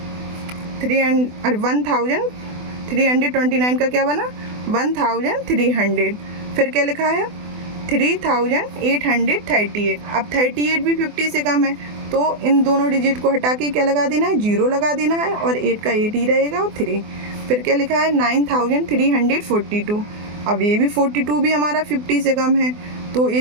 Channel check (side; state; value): left; late; 24 ms